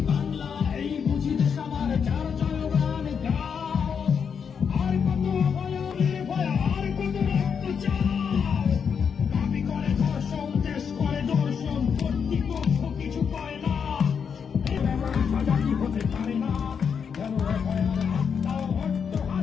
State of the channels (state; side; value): quieter; right; 6.7 dB